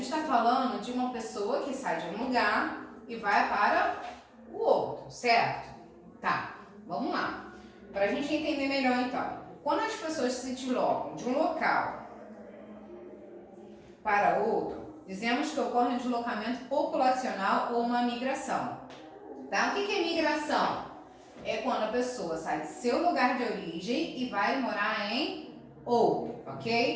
está falando de uma pessoa que sai de um lugar e vai para o outro, certo? Tá, vamos lá. Para a gente entender melhor então. Quando as pessoas se deslocam de um local para outro, dizemos que ocorre um deslocamento populacional ou uma migração. Tá? O que é migração? É quando a pessoa sai do seu lugar de origem e vai morar em outro,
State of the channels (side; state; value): both; identical; correlation 1.00